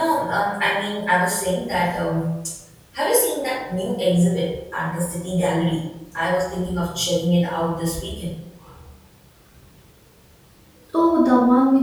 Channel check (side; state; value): both; identical; correlation 1.00